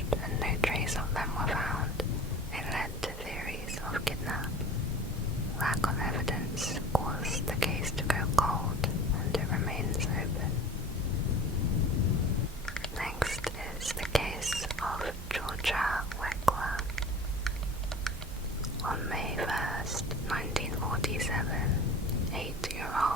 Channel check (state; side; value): normal; both; correlation 0.41